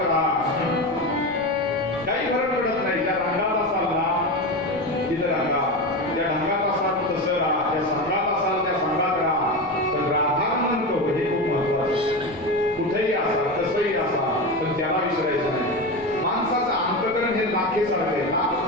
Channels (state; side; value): noise; left; rumble, 23 dB below the sound